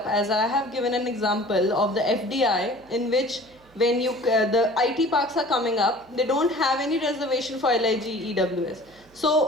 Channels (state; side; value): noise; right; hum, 29 dB below the sound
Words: As I have given an example of the FDI, in which when the IT parks are coming up, they don't have any reservation for LIG EWS.